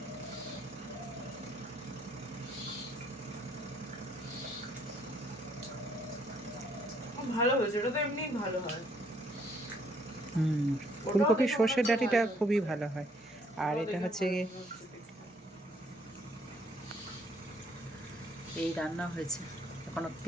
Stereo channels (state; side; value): normal; both; correlation 0.66